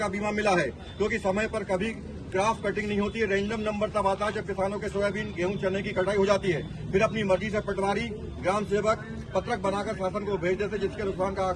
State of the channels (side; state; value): both; identical; correlation 1.00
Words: बीमा मिला है, क्योंकि समय पर कभी क्रॉस कटिंग नहीं होती है। रैंडम नंबर तब आता है जब किसानों के सोयाबीन, गेहूं, चने की कटाई हो जाती है। फिर अपनी मर्जी से पटवारी, ग्राम सेवक पत्रक बनाकर शासन को भेज देते, जिसके नुकसान का